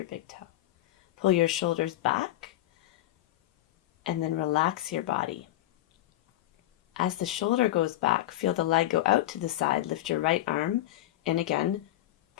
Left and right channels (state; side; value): quieter; right; 14.9 dB